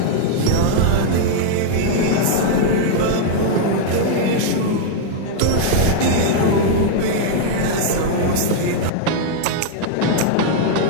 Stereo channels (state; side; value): different; both; correlation -0.01